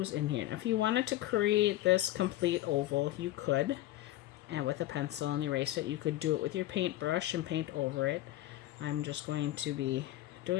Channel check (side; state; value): right; quieter; 15.1 dB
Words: in here. Now if you wanted to create this complete oval, you could. And with a pencil and erase it. You could do it with your paintbrush and paint over it. I'm just going to be